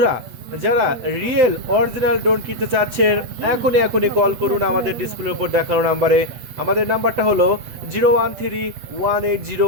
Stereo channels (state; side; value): late; left; 8.2 ms